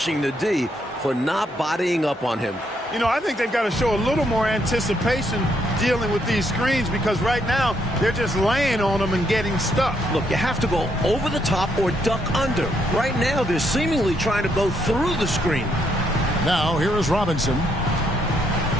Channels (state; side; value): normal; both; correlation 0.74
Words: the D for not bodying up on him. You know, I think they've got to show a little more anticipation dealing with these screens because right now they're just laying on them and getting stuck. Look, you have to go over the top or duck under. Right now they're seemingly trying to go through the screen. Now, here is Robinson.